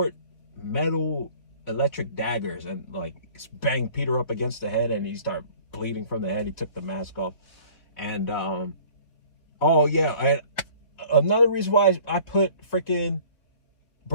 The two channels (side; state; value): right; late; 3.7 ms